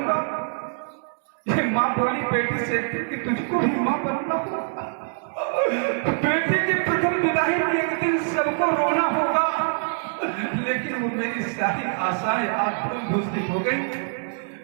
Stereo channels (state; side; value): silent; left; digital silence